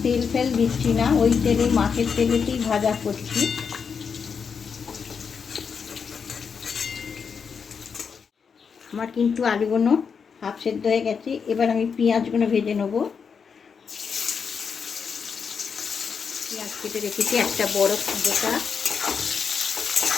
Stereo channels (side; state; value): right; quieter; 6.2 dB